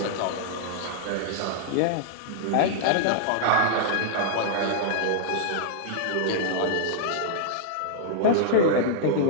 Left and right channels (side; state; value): both; different; correlation -0.01